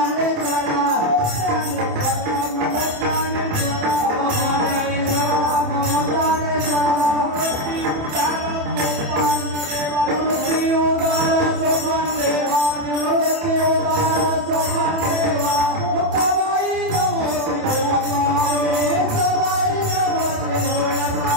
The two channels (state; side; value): late; left; 27 ms